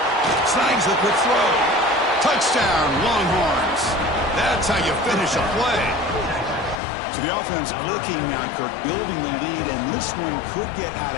Snags the quick throw. Touchdown, Longhorns. That's how you finish a play. So the offense clicking now, Kirk, building the lead, and this one could get out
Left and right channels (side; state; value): right; drops out; at 6.8 s